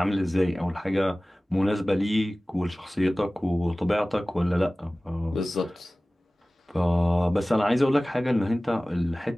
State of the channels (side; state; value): both; normal; correlation 0.98